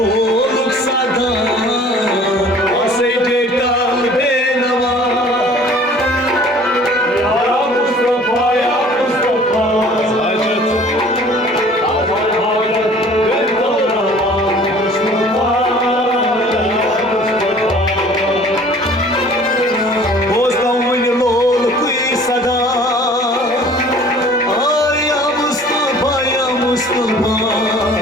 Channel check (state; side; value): normal; both; correlation 0.50